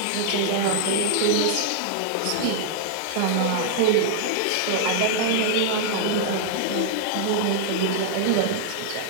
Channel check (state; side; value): different; both; correlation -0.01